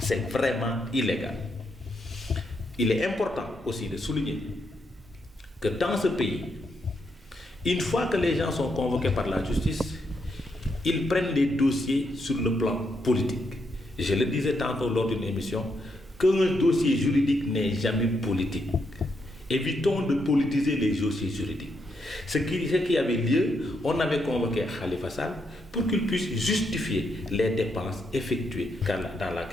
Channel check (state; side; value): normal; both; correlation 0.79